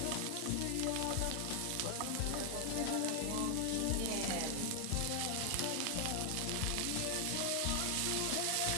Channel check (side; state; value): both; different; correlation 0.00